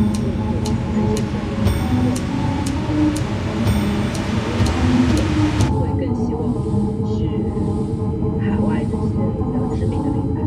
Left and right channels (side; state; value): both; identical; correlation 1.00